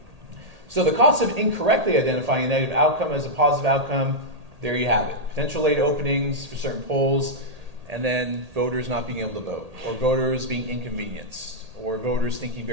So the cost of incorrectly identifying a negative outcome as a positive outcome, there you have it. Potential late openings for certain polls, and then voters not being able to vote, or voters being inconvenienced, or voters thinking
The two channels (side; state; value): left; late; 1.8 ms